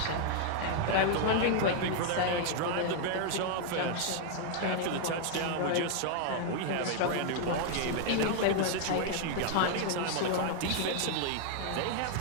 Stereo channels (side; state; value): both; different; correlation 0.00